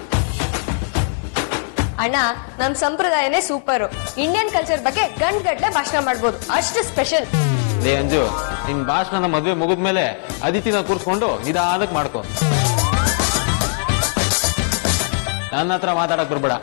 ಅಣ್ಣ, ನಮ್ ಸಂಪ್ರದಾಯನೇ ಸೂಪರು. ಇಂಡಿಯನ್ ಕಲ್ಚರ್ ಬಗ್ಗೆ ಗಂಟೆ ಭಾಷಣ ಮಾಡ್ಬೋದು, ಅಷ್ಟು ಸ್ಪೆಷಲ್. ಲೇ ಅಂಜು, ನಿನ್ ಭಾಷಣ ಮದ್ವೆ ಮುಗಿದ್ಮೇಲೆ ಅದಿತಿನ ಕೂರ್ಸ್ಕೊಂಡು ನಿಧಾನಕ್ ಮಾಡ್ಕೊ. ನನ್ನ ಹತ್ರ ಮಾತಾಡಕ್ ಬರ್ಬೇಡ.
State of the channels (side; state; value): right; silent; digital silence